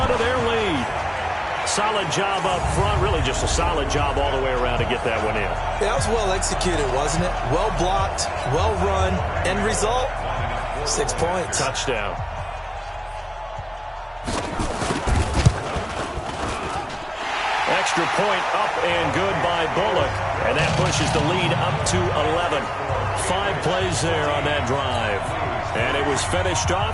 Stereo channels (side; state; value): both; identical; correlation 1.00